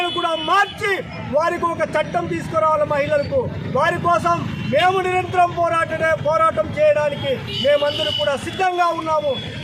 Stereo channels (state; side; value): identical; both; correlation 1.00